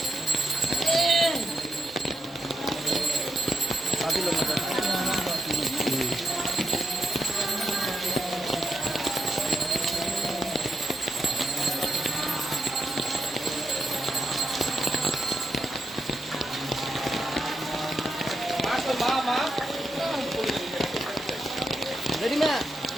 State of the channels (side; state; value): both; normal; correlation 0.84